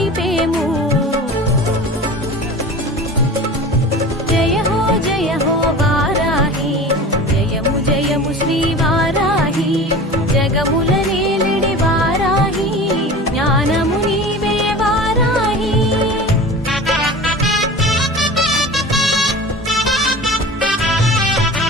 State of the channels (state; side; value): normal; both; correlation 0.36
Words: జయ హో వారాహి జయము జయము శ్రీ వారాహి జగముల నేలిడి వారాహి జ్ఞానము నీవే వారాహి